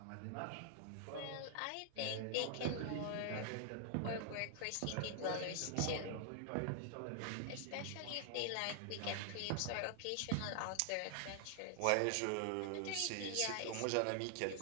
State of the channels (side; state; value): both; different; correlation 0.00